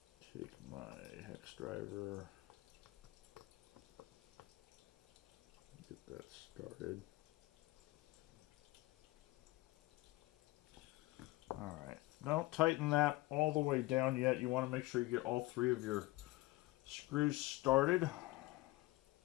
Take my hex driver. Get that started. Alright, don't tighten that all the way down yet. You want to make sure you get all 3 of your screws started. I'm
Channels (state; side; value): quieter; right; 20.1 dB